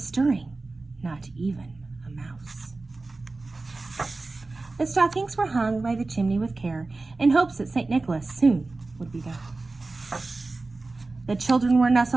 stirring, not even a mouse. The stockings were hung by the chimney with care, in hopes that St. Nicholas soon would be there. The children were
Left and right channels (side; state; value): left; quieter; 3.4 dB